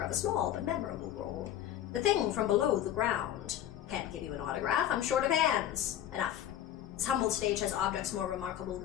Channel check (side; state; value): right; quieter; 11.3 dB